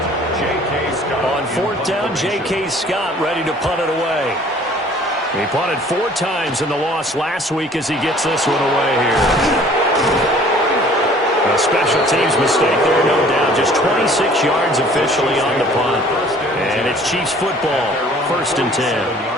On 4th down, J.K. Scott ready to punt it away. He punted 4 times in the loss last week as he gets this one away here. A special teams mistake there, no doubt. Just 26 yards officially on the punt. And it's Chiefs football, 1st and 10.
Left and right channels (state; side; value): normal; both; correlation 0.53